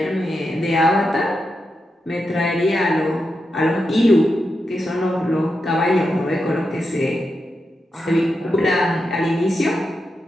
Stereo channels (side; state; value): both; normal; correlation 0.87